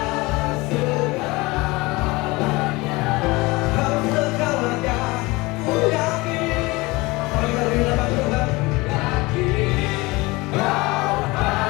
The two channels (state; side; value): quieter; right; 22.9 dB